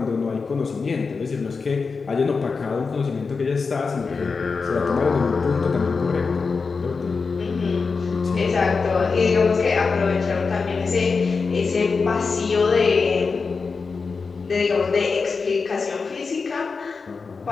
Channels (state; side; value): quieter; right; 4.7 dB